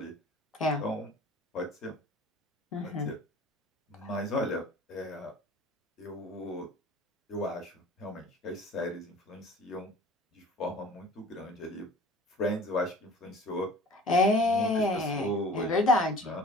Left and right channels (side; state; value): both; normal; correlation 0.46